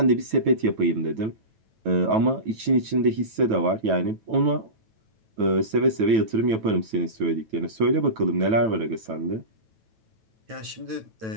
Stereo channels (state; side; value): late; left; 9.1 ms